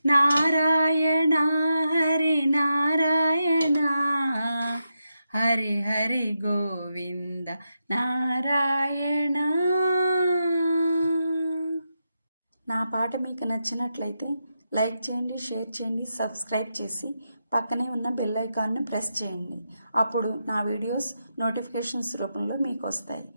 నారాయణ హరి నారాయణ హరి హరి గోవింద నారాయణ. నా పాట మీకు నచ్చినట్లయితే లైక్ చేయండి, షేర్ చేయండి, సబ్స్క్రైబ్ చేసి పక్కనే ఉన్న బెల్ ఐకాన్ని ప్రెస్ చేయండి. అప్పుడు నా వీడియోస్ నోటిఫికేషన్స్ రూపంలో మీకు వస్తాయి.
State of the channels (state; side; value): inverted; both; correlation -0.86